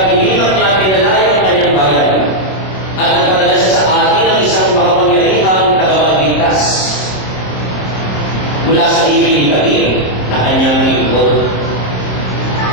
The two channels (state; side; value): late; right; 26 ms